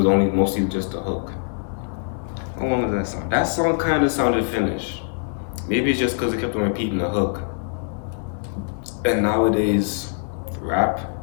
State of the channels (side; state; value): right; silent; digital silence